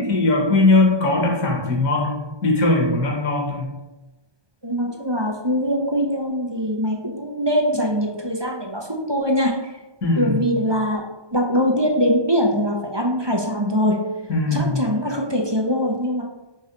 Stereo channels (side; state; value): left; late; 1.2 ms